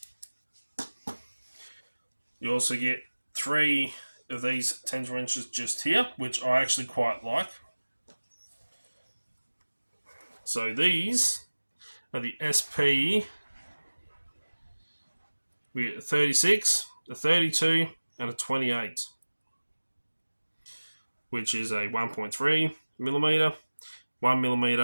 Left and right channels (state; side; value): inverted; both; correlation -1.00